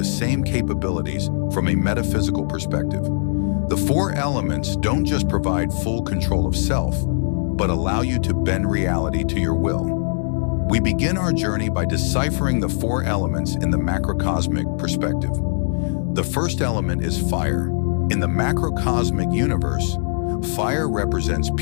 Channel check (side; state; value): right; silent; digital silence